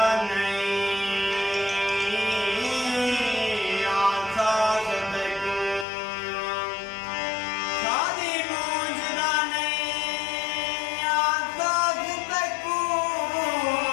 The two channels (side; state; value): right; drops out; at 5.9 s